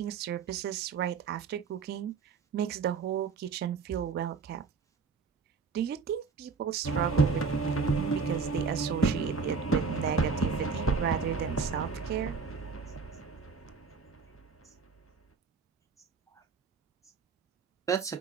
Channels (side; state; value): left; quieter; 5.1 dB